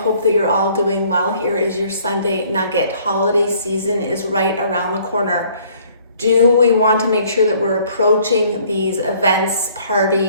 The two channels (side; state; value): both; inverted; correlation -0.59